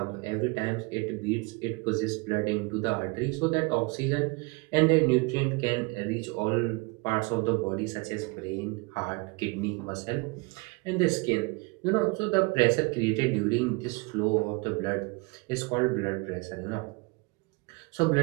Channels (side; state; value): left; quieter; 28.2 dB